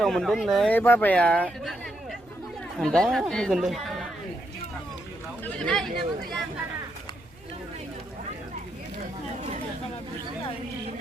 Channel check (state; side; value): noise; right; rumble, 26 dB below the sound